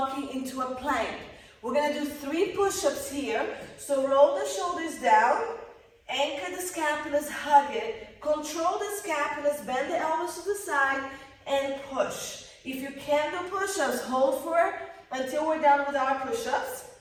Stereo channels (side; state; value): both; identical; correlation 1.00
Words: into a plank. We're gonna do 3 push-ups here. So roll the shoulders down, anchor the scapulas, hug it, control the scapulas, bend the elbows to the side, and push. If you can do push-ups, hold for it until we're done with our push-ups.